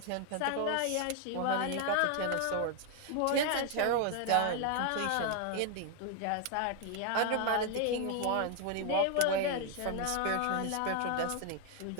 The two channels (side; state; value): both; different; correlation 0.00